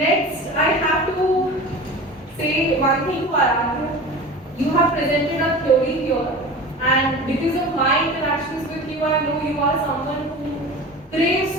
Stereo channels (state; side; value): normal; both; correlation 0.35